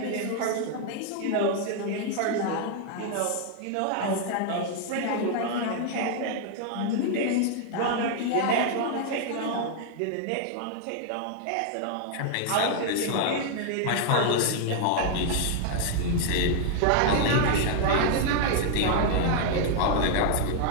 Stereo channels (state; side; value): different; both; correlation 0.00